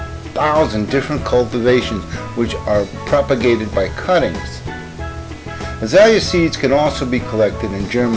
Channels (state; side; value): identical; both; correlation 1.00